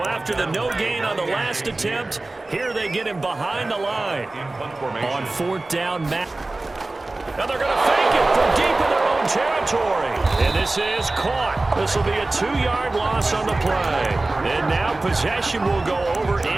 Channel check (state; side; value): quieter; left; 3.0 dB